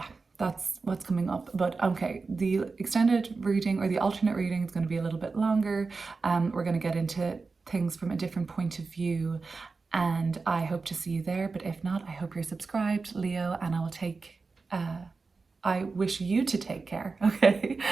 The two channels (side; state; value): left; quieter; 4.2 dB